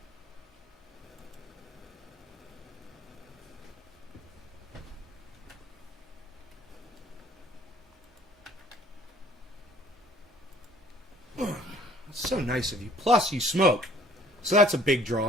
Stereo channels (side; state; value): both; normal; correlation 0.56